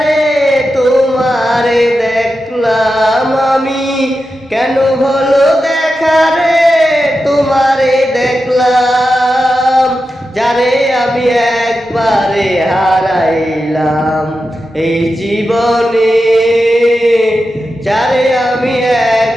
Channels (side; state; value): both; normal; correlation 0.90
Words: তোমারে দেখলাম আমি, কেন হলো দেখা রে তোমারে দেখলাম, যারে আমি একবারে হারাইলাম এই জীবনে, যারে আমি